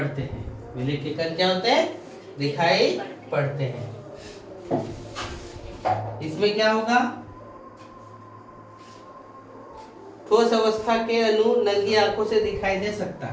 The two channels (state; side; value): identical; both; correlation 1.00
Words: हैं। विलय के कण क्या होते हैं, दिखाई पड़ते हैं। इसमें क्या होगा, ठोस अवस्था के अणु नंगी आंखों से दिखाई दे सकता